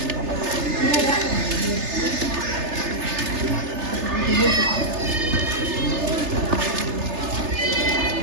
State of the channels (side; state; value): left; late; 3.3 ms